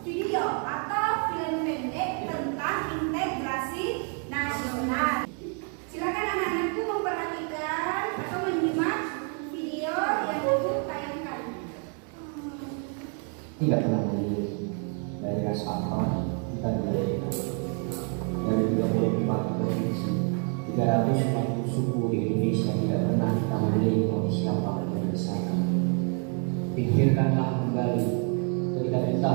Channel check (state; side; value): quieter; left; 39.2 dB